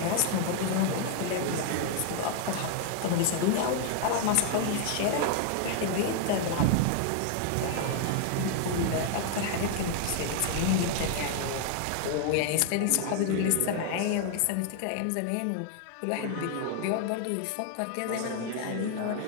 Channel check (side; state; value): both; different; correlation 0.00